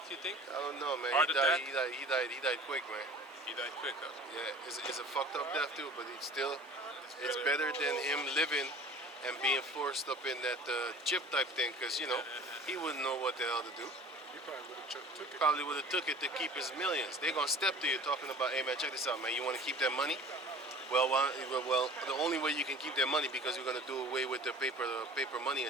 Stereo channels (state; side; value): normal; both; correlation 0.44